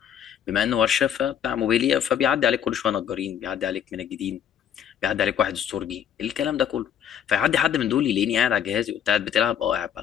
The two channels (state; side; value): quieter; right; 9.1 dB